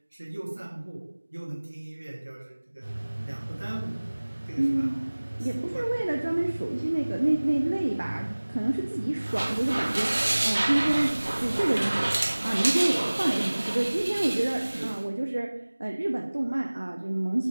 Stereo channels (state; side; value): inverted; both; correlation -1.00